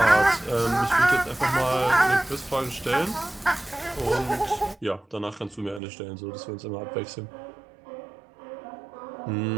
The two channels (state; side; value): drops out; left; at 5.8 s